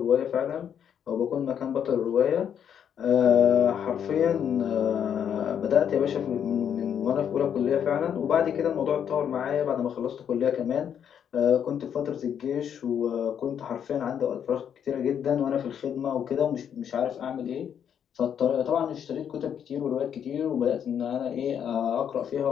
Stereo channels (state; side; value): quieter; right; 8.6 dB